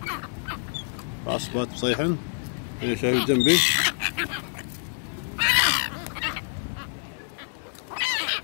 معصبات بصيحن. هنا شايف جنبي.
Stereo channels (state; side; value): silent; right; digital silence